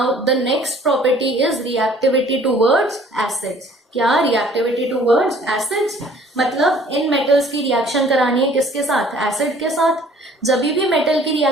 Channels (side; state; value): both; normal; correlation 0.54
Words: the next property is reactivity towards acids. क्या, रिएक्टिविटी टुवर्ड्स एसिड्स, मतलब इन मेटल्स की रिएक्शन करानी है किसके साथ, एसिड के साथ। जब भी मेटल की